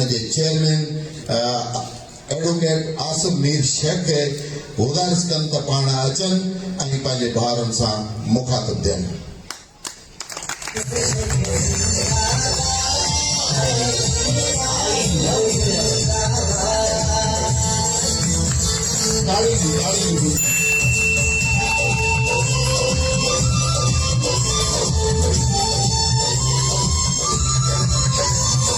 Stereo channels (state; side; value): identical; both; correlation 1.00